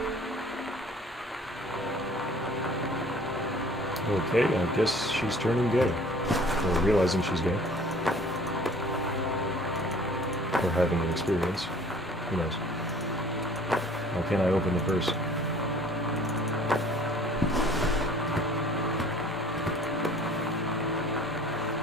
Okay, I guess she's turning gay. Or realizing she's gay. Or having an experience. Who knows? Why can't I open the purse?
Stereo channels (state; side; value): normal; both; correlation 0.51